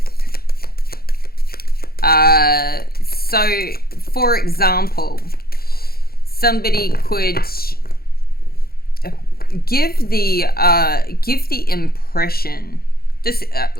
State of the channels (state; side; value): late; right; 0.44 ms